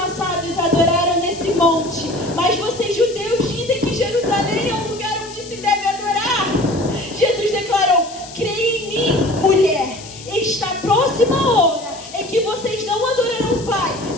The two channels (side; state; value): left; noise; hiss, 16 dB below the sound